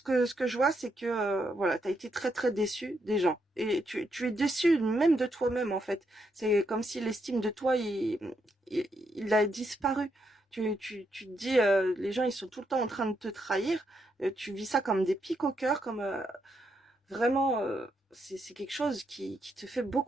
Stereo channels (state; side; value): normal; both; correlation 0.79